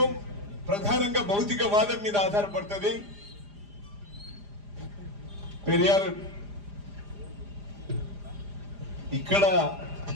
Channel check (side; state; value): left; late; 4.9 ms